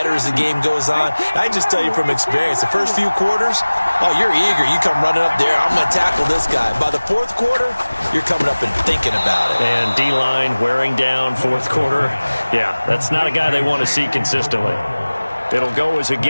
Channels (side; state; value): both; inverted; correlation -1.00